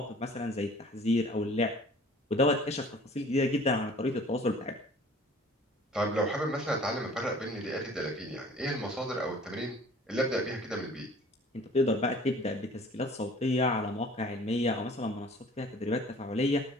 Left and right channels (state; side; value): normal; both; correlation 0.49